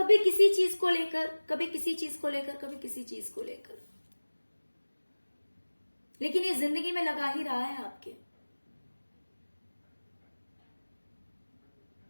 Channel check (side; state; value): both; inverted; correlation -1.00